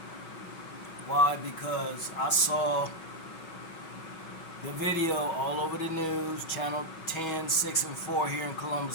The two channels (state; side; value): late; right; 6.2 ms